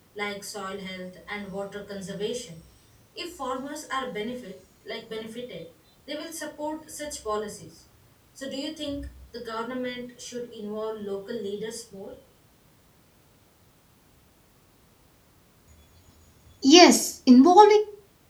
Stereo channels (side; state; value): both; identical; correlation 1.00